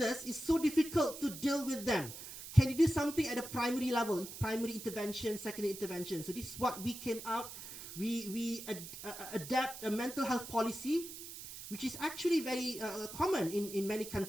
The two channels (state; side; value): noise; right; hiss, 11 dB below the sound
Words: It's so difficult to deal with them. Can you do something at the primary level, primary intervention, secondary intervention? So this is what we came out. We adapt a mental health policy, which is actually very common in many